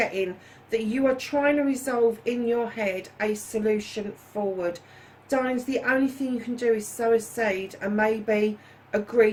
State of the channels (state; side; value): identical; both; correlation 1.00